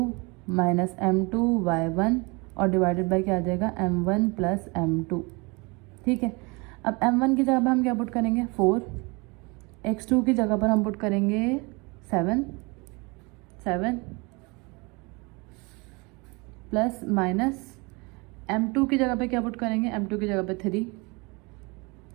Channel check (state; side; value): quieter; left; 27.7 dB